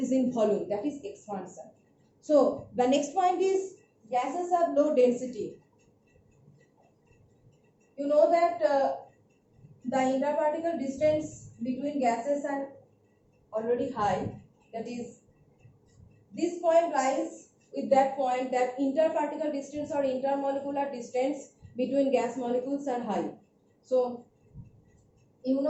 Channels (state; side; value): identical; both; correlation 1.00